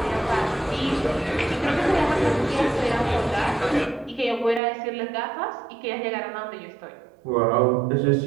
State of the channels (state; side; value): drops out; left; at 4.6 s